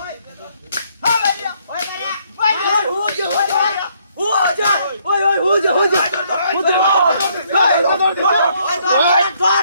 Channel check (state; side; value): inverted; both; correlation -0.69